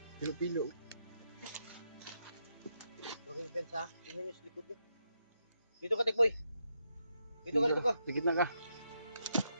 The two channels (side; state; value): both; inverted; correlation -0.81